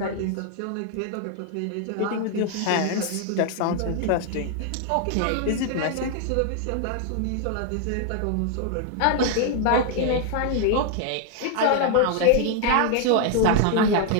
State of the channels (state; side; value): different; both; correlation 0.00